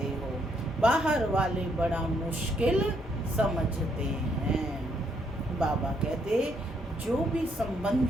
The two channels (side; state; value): both; normal; correlation 0.72